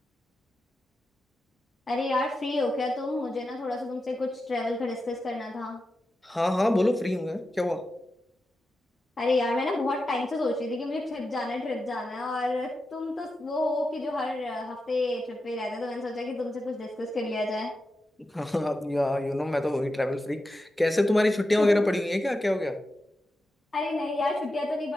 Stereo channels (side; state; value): both; normal; correlation 0.90